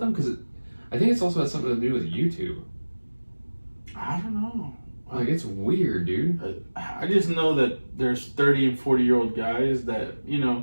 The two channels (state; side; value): inverted; both; correlation -1.00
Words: Because I think it's also has something to do with YouTube. I don't know. Like, it's weird, dude. I just know that there's 30 and 40-year-old guys that,